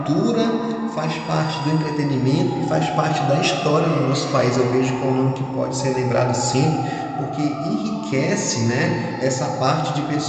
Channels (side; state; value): both; identical; correlation 1.00